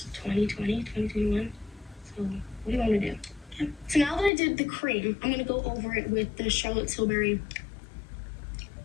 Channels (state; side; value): drops out; right; at 4.3 s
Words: 2020, 2021. So what do you want me to do? Okay. So now that I did the cream, I'm gonna go over it with the Charlotte Tilbury